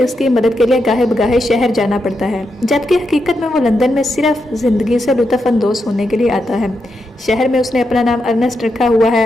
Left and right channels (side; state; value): both; normal; correlation 0.84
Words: उसकी मदद के लिए गाहे बगाहे शहर जाना पड़ता है, जबकि हकीकत में वो लंदन में सिर्फ ज़िंदगी से लुत्फ़अंदोज़ होने के लिए आता है। शहर में उसने अपना नाम अर्नेस्ट रखा हुआ